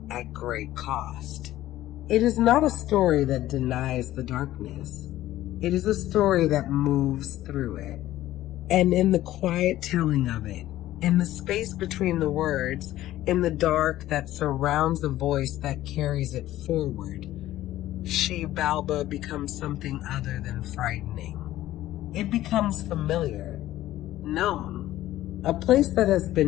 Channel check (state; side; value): quieter; right; 14.6 dB